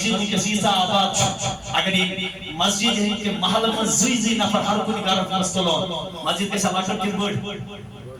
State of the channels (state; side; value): identical; both; correlation 1.00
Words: میں کسی سا آباد اگر یہ مسجد ہے کہ محل میں زی نفر ہر کوئی گارت مستلون مسجد کے سلاکر کن بڑھ